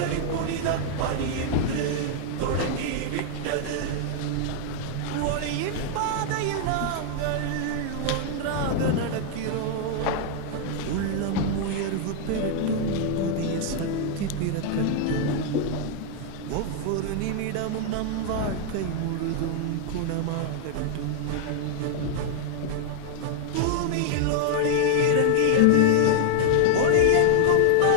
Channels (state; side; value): different; both; correlation -0.01